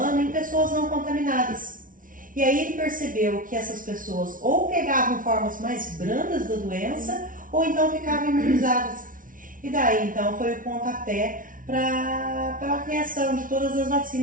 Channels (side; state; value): left; late; 0.39 ms